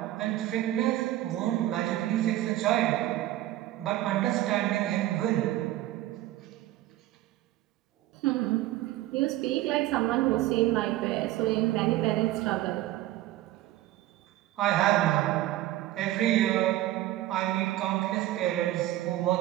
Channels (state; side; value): quieter; left; 15.1 dB